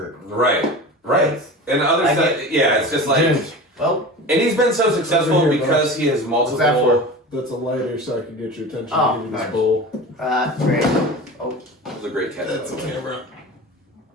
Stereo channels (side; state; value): both; normal; correlation 0.33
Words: Right. Right. And other stuff, it's just like, Ginge. Well, and he's been so successful Over here, because he has what's that multiple. That's a lighter so I can get your attention. Oh, Give you this nice. bowl. great. Oh, That was a great catch. That's a camera.